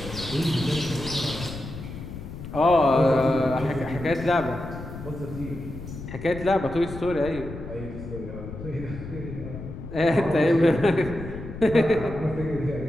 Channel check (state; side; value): noise; left; rumble, 10 dB below the sound